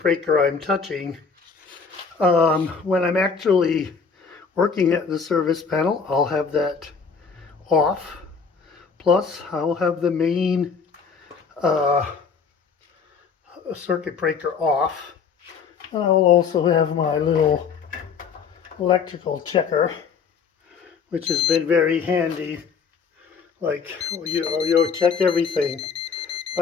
I'm touching. When I'm actually working at the service panel, I'll have that off. Plus, I'll have the main circuit breaker off. And I will also have my little electrical checker, which has been very handy. Like, you check everything.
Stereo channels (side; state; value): right; quieter; 5.7 dB